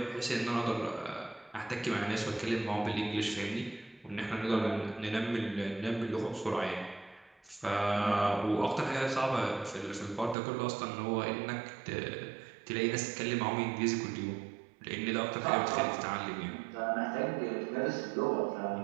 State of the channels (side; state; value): left; drops out; at 10.4 s